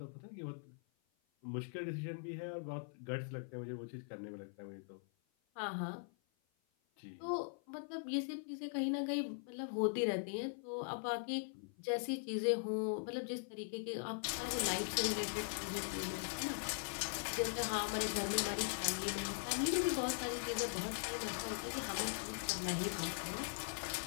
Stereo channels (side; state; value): right; silent; 50 dB below the other